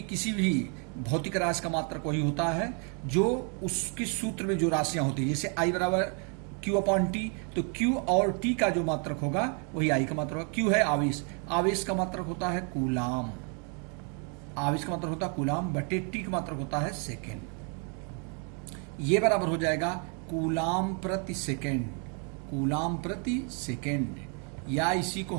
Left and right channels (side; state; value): left; quieter; 38.3 dB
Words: भी भौतिक राशि का मात्रक वही होता है जो उसके सूत्र में जो राशियां होती है। जैसे आई बराबर Q अपॉन T, तो Q और T का जो मात्रक होगा वही आई का मात्रक होगा। Q है आवेश, आवेश का मात्रक होता है कूलाम, आवेश का मात्रक होता है कूलाम बटे T का मात्रक होता है सेकेंड। ये बराबर हो जाएगा कूलाम प्रति सेकेंड, कूलाम प्रति सेकेंड, या इसी को